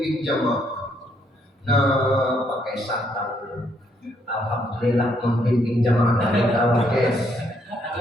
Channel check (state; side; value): normal; both; correlation 0.72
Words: jamaah. Nah, pakai santan. Alhamdulillah pembimbing jamaah dari tawa guys.